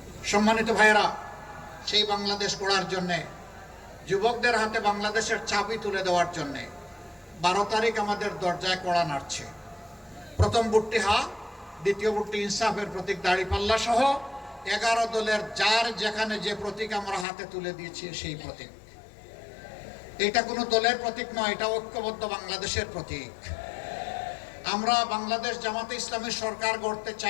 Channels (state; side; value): drops out; right; at 17.2 s